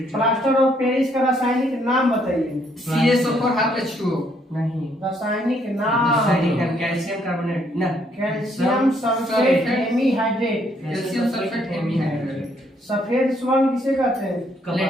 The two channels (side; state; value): both; normal; correlation 0.69